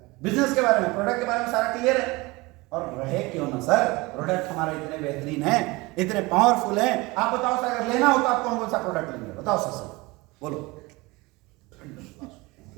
बिजनेस के बारे में, प्रोडक्ट के बारे में सारा क्लियर है। और रहे क्यों ना सर, प्रोडक्ट हमारे इतने बेहतरीन है, इतने पावरफुल है। आप बताओ सर, अगर लेना हो तो आप कौन कौन सा प्रोडक्ट लेंगे? बताओ सर, बोलो।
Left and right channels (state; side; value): quieter; left; 23.1 dB